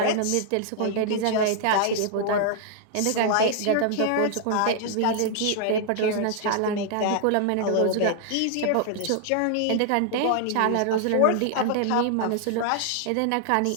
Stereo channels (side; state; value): both; different; correlation -0.01